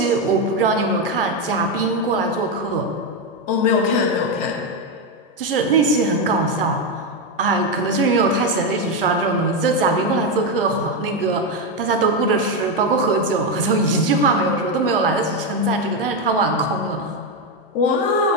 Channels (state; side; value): normal; both; correlation 0.07